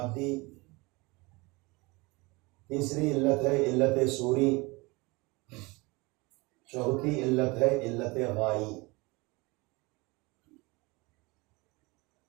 تیسری علت ہے علت صوری. چوتھی علت ہے علت غائی.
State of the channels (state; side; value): quieter; left; 25.1 dB